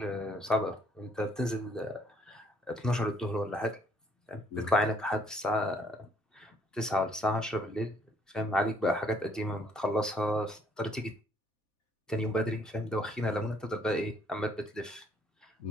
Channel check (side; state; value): both; normal; correlation 0.65